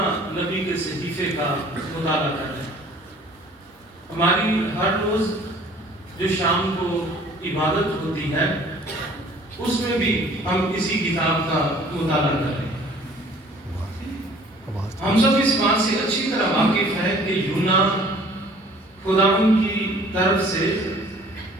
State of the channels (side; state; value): both; normal; correlation 0.53